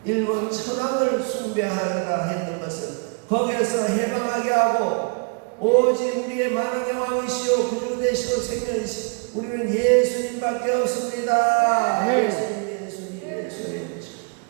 일본 천황을 숭배하라 했던 것을 거기에서 해방하게 하고 오직 우리의 만왕의 왕이시오 구주 되시오 생명이시오 우리는 예수님밖에 없습니다. 네. 예수님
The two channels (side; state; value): left; quieter; 36.8 dB